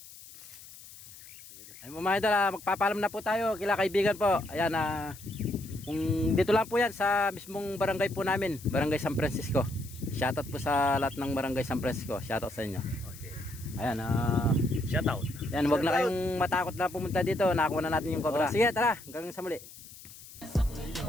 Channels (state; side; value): noise; left; hiss, 18 dB below the sound